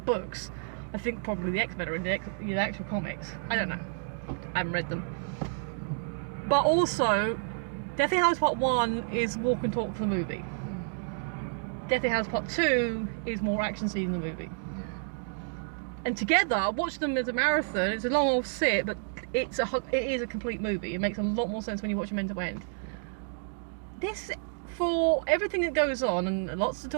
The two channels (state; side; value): silent; left; digital silence